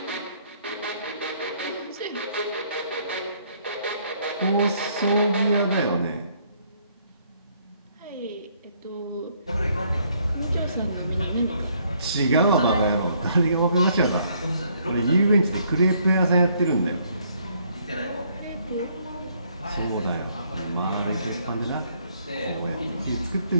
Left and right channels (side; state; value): both; inverted; correlation -0.67